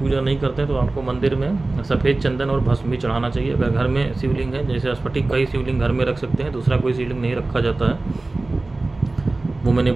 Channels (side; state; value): left; quieter; 3.1 dB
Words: नहीं करते हैं तो आपको मंदिर में सफ़ेद चंदन और भस्म भी चढ़ाना चाहिए। अगर घर में शिवलिंग है, जैसे स्फटिक का ही शिवलिंग घर में रख सकते हैं, दूसरा कोई शिवलिंग नहीं रखा जाता है, वो मैंने